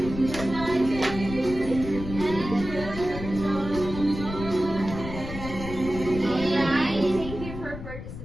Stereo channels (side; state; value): left; noise; rumble, 9 dB below the sound